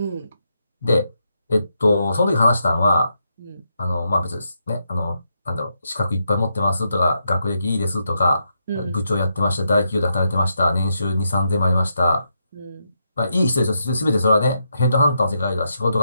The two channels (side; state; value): both; inverted; correlation -0.82